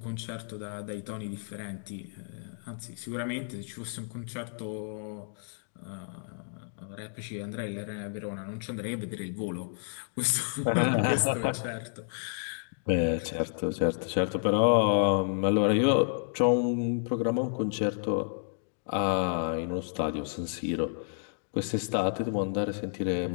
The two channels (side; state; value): right; silent; digital silence